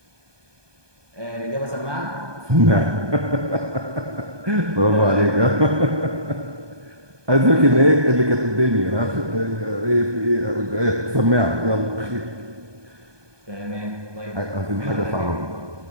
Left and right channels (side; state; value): left; late; 1.2 ms